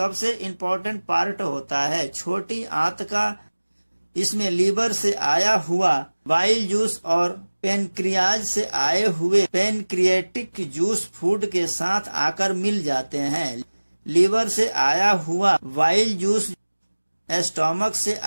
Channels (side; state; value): both; inverted; correlation -1.00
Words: इम्पोर्टेंट पार्ट होता है छोटी आंत का। इसमें लीवर से आया हुआ बाइल जूस और पेनक्रियाज से आए हुए पेनक्रिएटिक जूस फूड के साथ आकर मिल जाते हैं। लीवर से आया हुआ बाइल जूस स्टोमक से